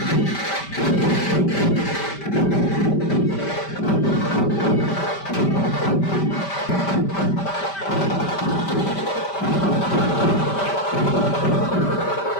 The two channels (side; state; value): right; late; 5.1 ms